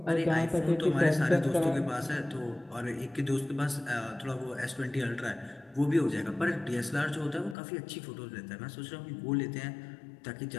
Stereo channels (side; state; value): right; drops out; at 7.6 s